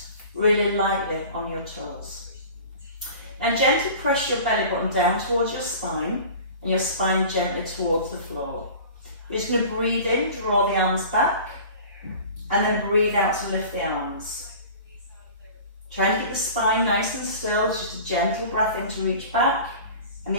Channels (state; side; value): inverted; both; correlation -0.40